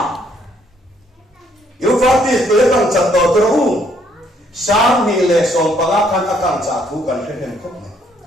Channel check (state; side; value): normal; both; correlation 0.68